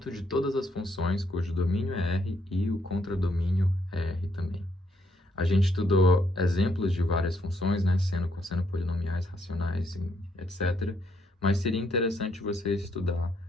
de todas as funções cujo domínio é R e o contradomínio é R também. A gente estudou exemplos de várias funções, né? Seno, cosseno, polinomiais, racionais, etc. Mas seria interessante você estudar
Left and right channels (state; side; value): normal; both; correlation 0.73